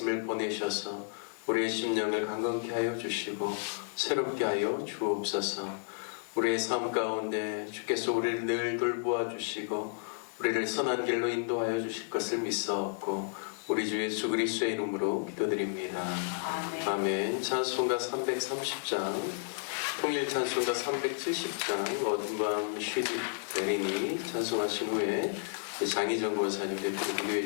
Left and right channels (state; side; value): silent; right; 56 dB below the other